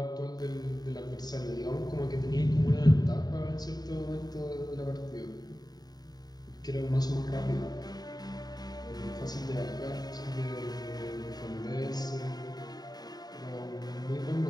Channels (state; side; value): late; right; 0.19 ms